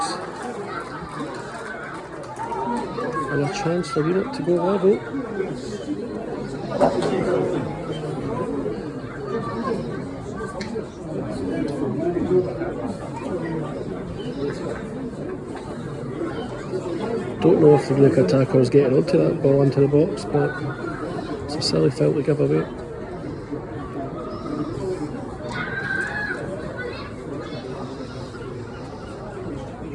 And a chance for GREENOCK to go level. Don't know if the GREENOCK attacker was getting onto that ball into the box, but it's a silly foul to give away.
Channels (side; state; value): both; identical; correlation 1.00